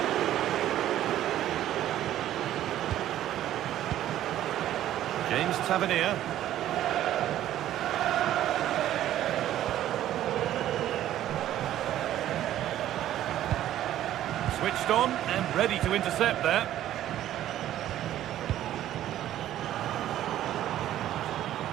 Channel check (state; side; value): quieter; left; 12.6 dB